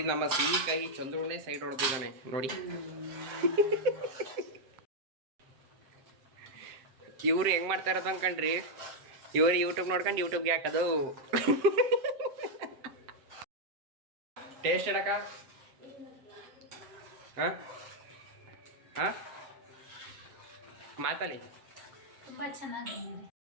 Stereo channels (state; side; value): late; left; 7.7 ms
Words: ನಮ್ಮ ಸಿಹಿ ಕೈ ಚಂದ್ರನೇ ಸೈಡ್ ಹೊಡೆದಿದ್ದಾನೆ ನೋಡಿ. ಇವ್ರು ಹೆಂಗೆ ಮಾಡ್ತಾ ಇರೋದು ಅನ್ಕಂಡ್ರಿ, ಇವ್ರು ಯೂಟ್ಯೂಬ್ ನೋಡ್ಕೊಂಡು ಯೂಟ್ಯೂಬ್ಗೆ ಹಾಕೋದು. ಟೇಸ್ಟ್ ಹೇಳಕ್ಕ? ಹಾಂ ಹಾಂ ಮಾತಲ್ಲಿ ತುಂಬಾ ಚೆನ್ನಾಗಿ